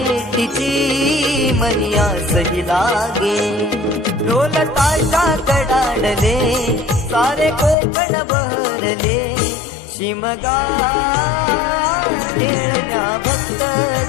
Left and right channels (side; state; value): right; drops out; at 7.8 s